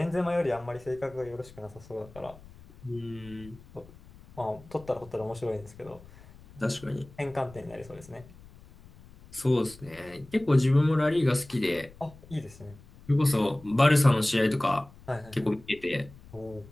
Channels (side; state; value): left; noise; rumble, 22 dB below the sound